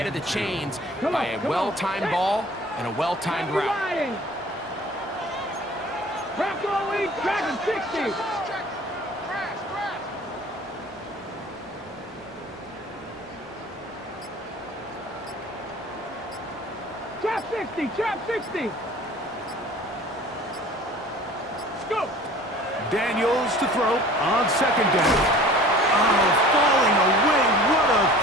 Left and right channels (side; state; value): both; normal; correlation 0.46